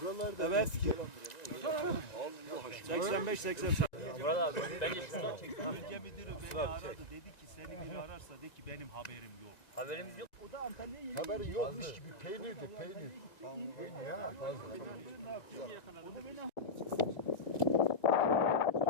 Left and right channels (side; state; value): right; late; 1.9 ms